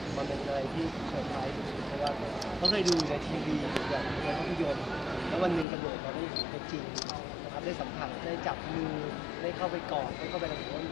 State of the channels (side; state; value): right; drops out; at 5.7 s